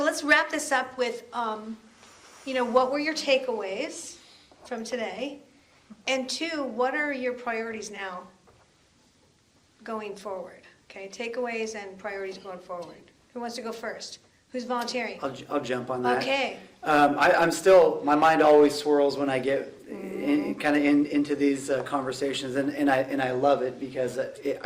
let's wrap this up with, what were your takeaways from today? And two, what are your priorities now going forward? Okay, takeaways and priorities going forward. Who wants to go first? Who's volunteering? I'll jump on that. Okay. I'm still, my mind always swirls when I get into these conversations, and I love it because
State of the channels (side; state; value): both; identical; correlation 1.00